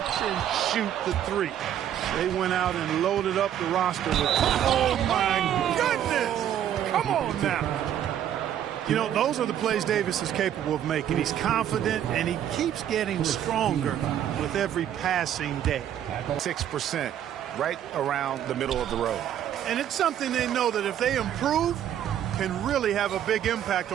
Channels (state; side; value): quieter; left; 10.5 dB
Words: and shoot the 3. They went out and loaded up the roster with, oh my goodness! Come on now. You know, those are the plays Davis is capable of making. He's confident, and he keeps getting stronger with every passing day. 6%, right around the middle of the road. And it's something they know that if they improve, can really have a big impact